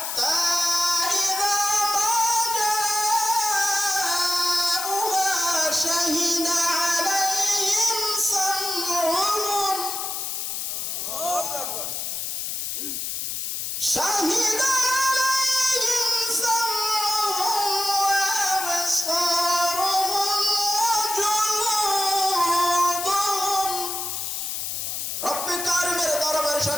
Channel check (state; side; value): noise; left; hiss, 3 dB below the sound